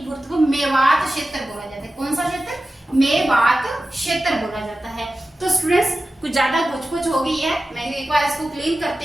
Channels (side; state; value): both; normal; correlation 0.94